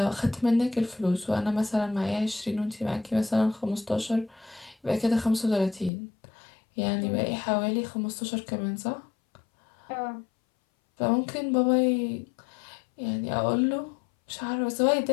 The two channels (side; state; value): right; drops out; at 5.9 s